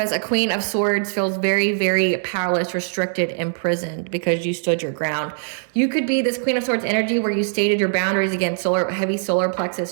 a Queen of Swords feels very, very powerless, restricted, imprisoned because you stood your ground. You could be this Queen of Swords energy where you stated your boundaries, again, heavy solar plexus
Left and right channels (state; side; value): silent; left; digital silence